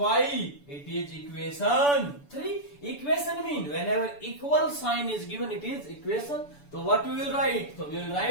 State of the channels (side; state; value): right; late; 6.9 ms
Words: It is equation 3. Equation mean whenever equal sign is given, it is equation. So what we will write? So we will